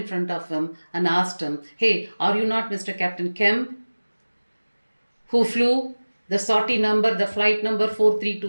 front of him and asked him, "Hey, are you not Mr. Captain Kemp, who flew the sortie number, the flight number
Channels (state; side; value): inverted; both; correlation -1.00